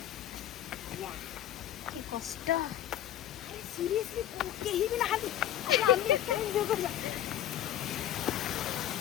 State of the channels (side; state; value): right; quieter; 12.0 dB